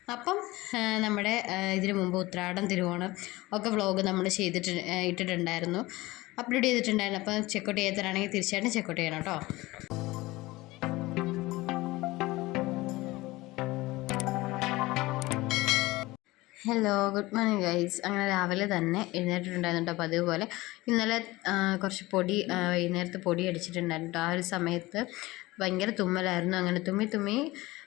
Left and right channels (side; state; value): right; quieter; 19.9 dB